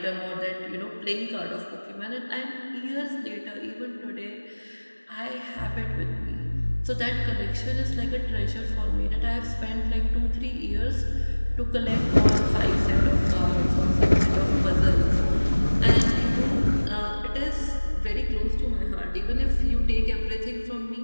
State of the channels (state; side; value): inverted; both; correlation -1.00